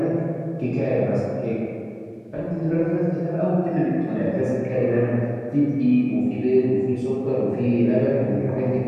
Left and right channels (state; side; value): identical; both; correlation 1.00